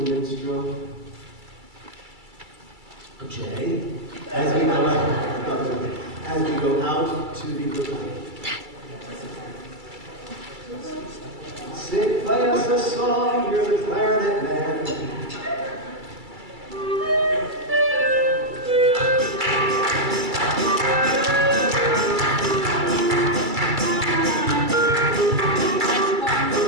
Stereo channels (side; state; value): left; late; 2.3 ms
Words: Jay, as we go out to the pavilion. Sing, play us a song, you're the clarinet man.